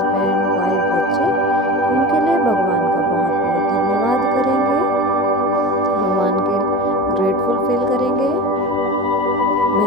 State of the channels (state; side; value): normal; both; correlation 0.29